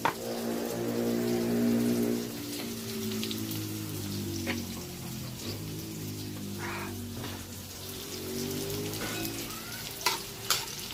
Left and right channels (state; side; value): identical; both; correlation 1.00